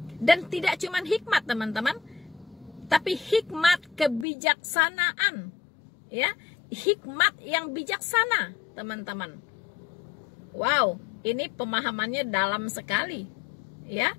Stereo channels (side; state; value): right; drops out; at 4.2 s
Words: Dan tidak cuma hikmat, teman-teman, tapi hikmat kebijaksanaan, ya. Hikmat yang bijaksana, teman-teman. Wow, ini pemahamannya dalam sekali, ya.